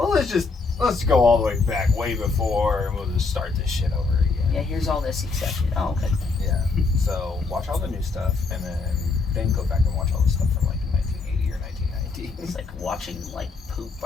let's go all the way back way before, and we'll just start this shit over again. Yeah, here's all this accepted. Oh, okay. Yeah. So watch all the new stuff, and then go back and watch all the stuff from like 1980 or 1990. It's like watching like poop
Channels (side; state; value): right; quieter; 4.2 dB